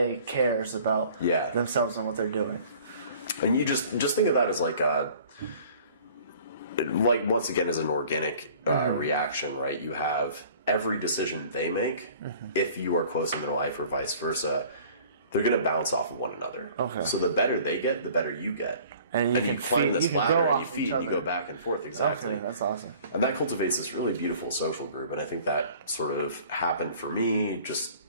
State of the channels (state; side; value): inverted; both; correlation -0.50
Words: cares about themselves and what they're doing. And you just think of that as like once again as an organic reaction, right? You have every decision they make, if you are close in their life or vice versa, they're going to bounce off of one another. Okay. So the better they get, the better you get. And you can climb this ladder and you feed and you go back and forth. Exactly. Okay, that's awesome. And that cultivates this really beautiful social group. And I think that sort of happened for me just